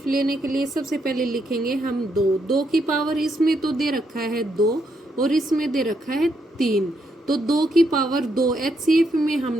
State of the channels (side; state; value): both; normal; correlation 0.77